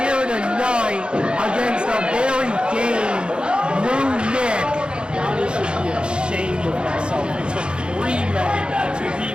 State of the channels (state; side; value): late; left; 0.053 ms